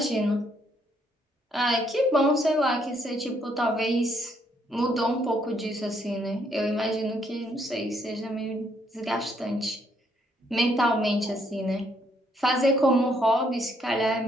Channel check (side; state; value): both; normal; correlation 0.71